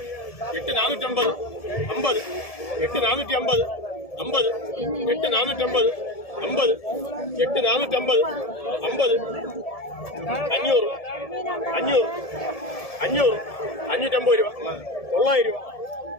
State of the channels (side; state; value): right; late; 1.7 ms